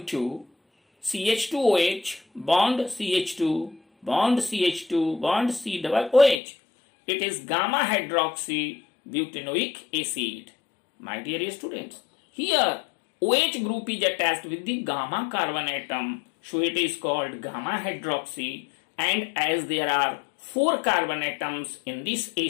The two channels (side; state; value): right; drops out; at 6.4 s